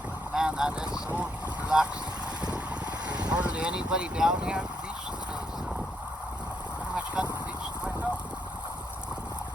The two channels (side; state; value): both; normal; correlation 0.76